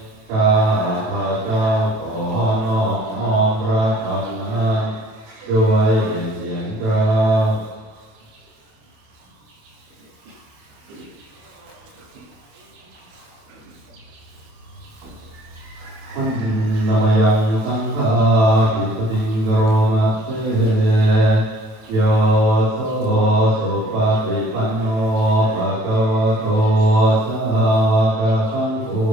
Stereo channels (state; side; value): late; left; 27 ms